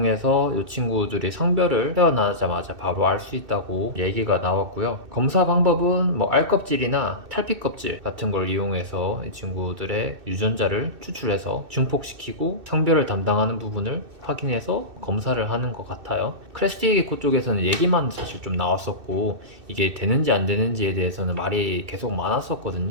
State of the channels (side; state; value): left; late; 2.6 ms